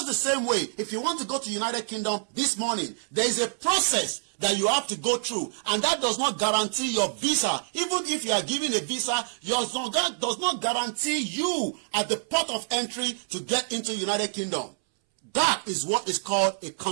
the same way, if you want to go to United Kingdom this morning, there is a process that you have to go through, and that does not guarantee your visa. Even if you are given a visa, that does not guarantee you at the port of entry to get into United Kingdom. That is what is called a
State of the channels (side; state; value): left; silent; 60 dB below the other